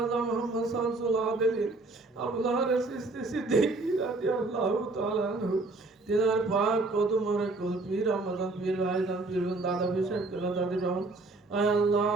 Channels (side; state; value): left; quieter; 3.2 dB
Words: মুহাম্মদ শামসুল আবেদিন আবুল হারিস চিশতি সিদ্দিকী রাদিয়াল্লাহু তাআলা আনহু তিনার পাক কদম মোবারক কুল পীর রহমান পীর ভাইজান পীর দাদা পীর সাহেব কেলা দাদি রহমান। আয় আল্লাহ